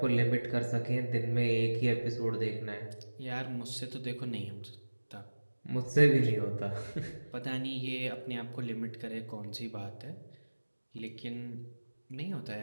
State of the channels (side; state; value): both; inverted; correlation -1.00